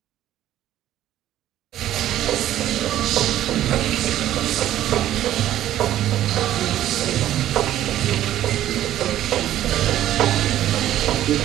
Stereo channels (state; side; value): quieter; left; 12.7 dB